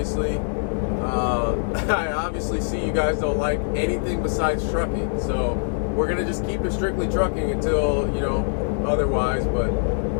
I obviously see you guys don't like anything besides trucking, so we're gonna just keep it strictly trucking until, you know, otherwise. But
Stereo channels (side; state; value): right; silent; digital silence